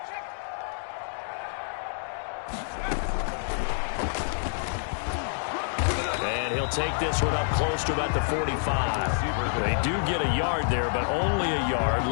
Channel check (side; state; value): right; silent; digital silence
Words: And he'll take this one up close to about the 45. They do get a yard there, but only a yard.